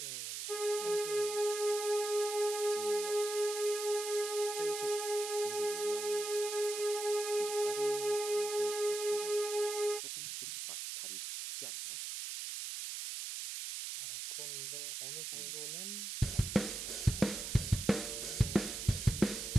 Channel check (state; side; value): noise; right; hiss, 5 dB below the sound